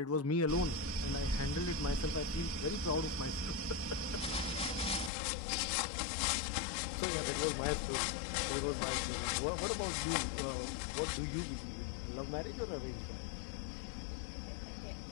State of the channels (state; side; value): drops out; right; at 5.1 s